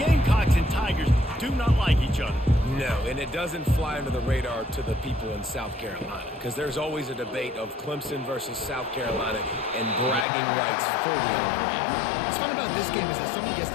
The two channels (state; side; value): drops out; right; at 10.2 s